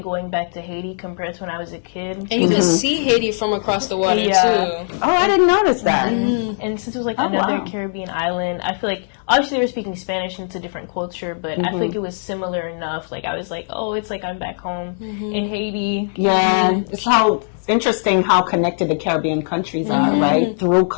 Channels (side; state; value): right; silent; digital silence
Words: going back to Haiti compared to when I was a kid. And you could see Haiti from across the water, too. Oh, I didn't notice that. And since it was like another Caribbean island, I feel like obviously they were speaking Spanish and it's a different culture, but I feel like it was similar enough. Like I was like, oh, it's like I'm back home in Haiti. Yeah, it's how interesting how connected the Caribbean countries are, right? Through